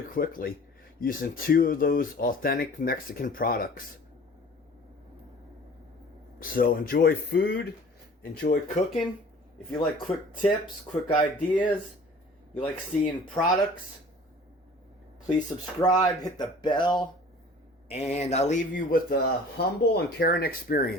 quickly using two of those authentic Mexican products. So enjoy food, enjoy cooking. If you like quick tips, quick ideas, you like seeing products, please subscribe, hit the bell. And I leave you with a humble and caring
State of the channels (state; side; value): normal; both; correlation 0.47